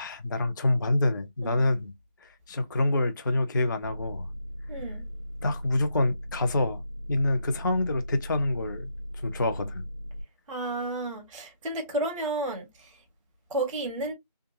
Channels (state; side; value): inverted; both; correlation -0.76